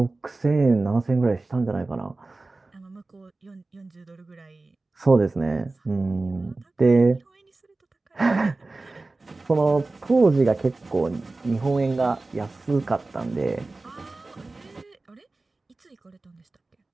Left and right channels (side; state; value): left; quieter; 3.3 dB